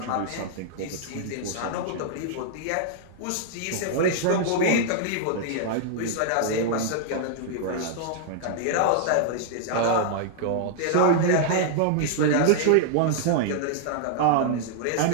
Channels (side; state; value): both; different; correlation -0.01